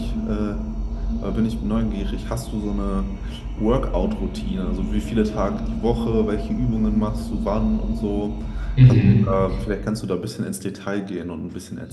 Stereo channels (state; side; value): identical; both; correlation 1.00